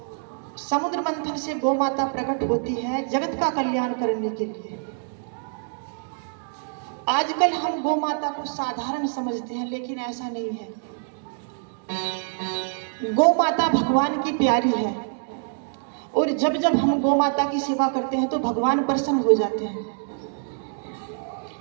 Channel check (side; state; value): left; silent; digital silence